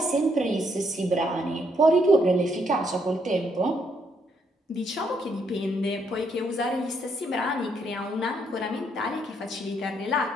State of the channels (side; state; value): both; normal; correlation 0.73